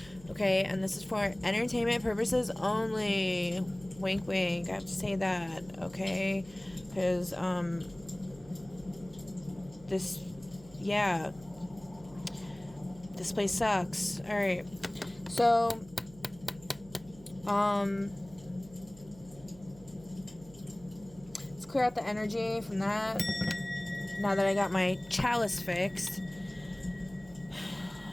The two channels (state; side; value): noise; right; hum, 22 dB below the sound